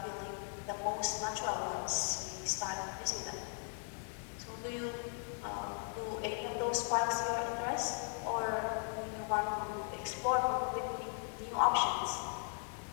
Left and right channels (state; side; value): silent; right; 52 dB below the other